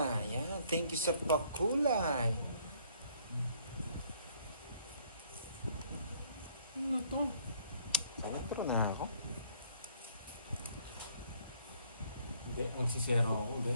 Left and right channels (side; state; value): both; inverted; correlation -0.63